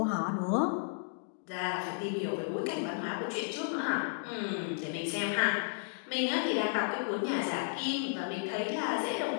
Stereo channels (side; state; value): right; silent; digital silence